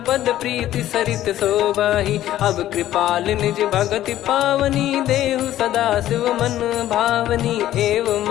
पद प्रीति सरित शोभाही। अब कृपाल निज भगति पावनी, देहु सदा शिव मन भावनी। एव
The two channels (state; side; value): quieter; right; 13.2 dB